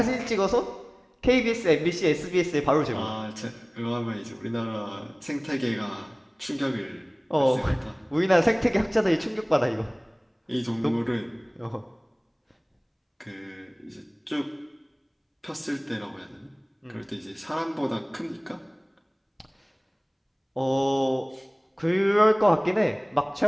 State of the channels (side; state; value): both; identical; correlation 1.00